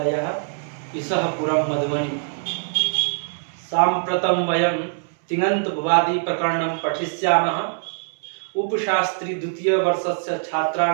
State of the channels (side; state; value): left; silent; 64 dB below the other